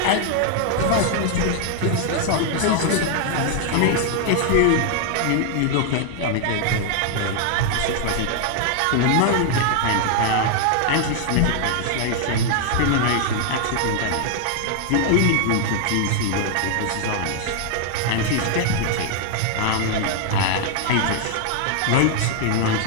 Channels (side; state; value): both; different; correlation 0.00